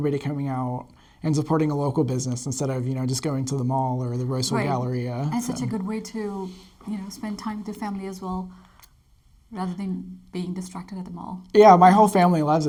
coming out and supporting a local business instead of just going to the mall or the Roseville Right. Galleria. And So- such a good way to, spend time with your family as well, rather than being distracted at the mall. Yeah, my whole family loves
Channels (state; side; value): identical; both; correlation 1.00